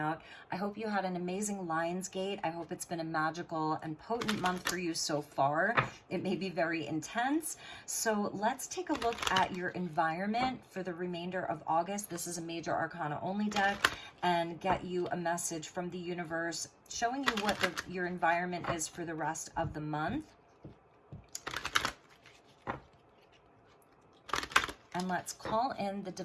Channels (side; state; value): both; identical; correlation 1.00